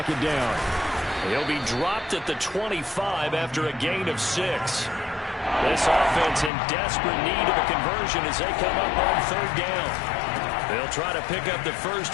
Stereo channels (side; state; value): right; drops out; at 6.5 s